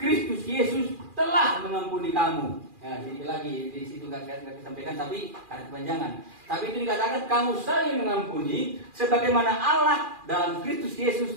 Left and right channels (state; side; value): late; left; 2.4 ms